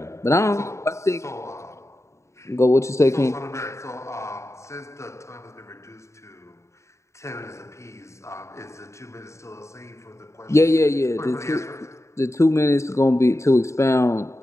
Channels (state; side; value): late; right; 0.14 ms